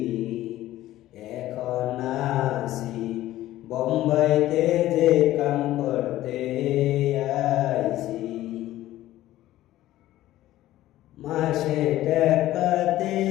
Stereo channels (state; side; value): quieter; right; 14.9 dB